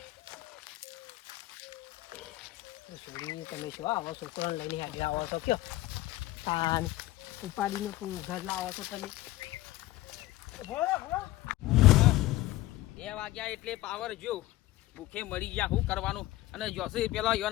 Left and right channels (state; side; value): quieter; right; 16.9 dB